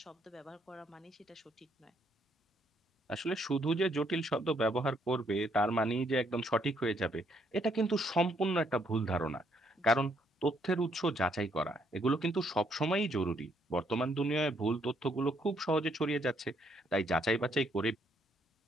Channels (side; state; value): both; normal; correlation 0.71